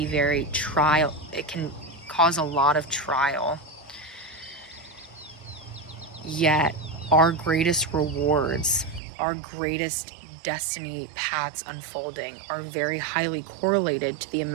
very trial. It can cause a lot of trial. Yet our greatest rewards, our greatest destiny paths unfolding are very highly correlated to the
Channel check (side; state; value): left; drops out; at 9.0 s